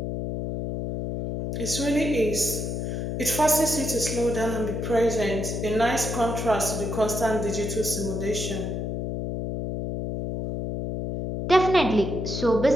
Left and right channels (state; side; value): noise; left; hum, 3 dB below the sound